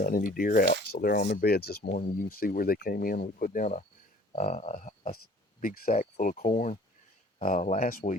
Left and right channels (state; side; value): normal; both; correlation 0.52